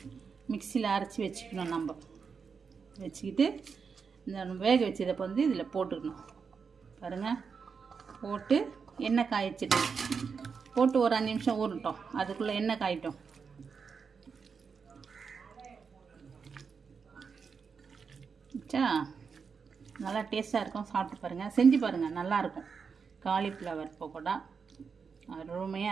மிக்சியில் அரைச்சி வச்சுக்கணும். நம்ம வச்சுக்கிட்டு இந்த வேக வச்சதை வந்து இதில் போட்டுக்கணும். பாருங்கள், போட்டு எண்ணெய் காய்ச்சிட்டு போட்டு ஒரு 5 நிமிஷம் ஊறட்டும். அதுக்குள்ளே எண்ணெய் காயிட்டும். நல்லா டேஸ்ட்டாக இருக்கும். சாப்பிட்டு பாருங்கள், செஞ்சு பாருங்கள், நல்லாயிருக்கும். காலிஃப்ளவர் பக்கோடா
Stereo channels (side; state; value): left; quieter; 5.7 dB